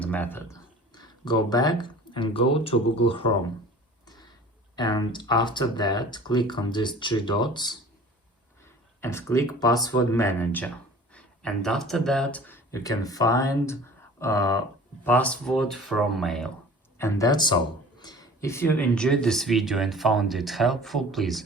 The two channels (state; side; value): normal; both; correlation 0.43